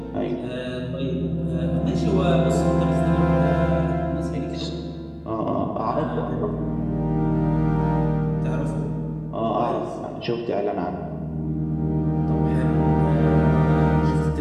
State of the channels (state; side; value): identical; both; correlation 1.00